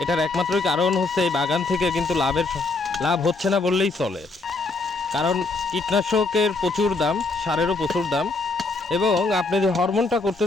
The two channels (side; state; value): right; quieter; 3.5 dB